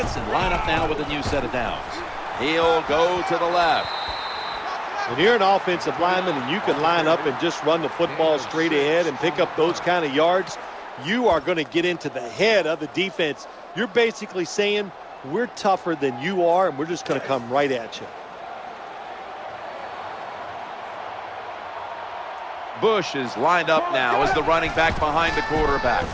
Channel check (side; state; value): both; identical; correlation 1.00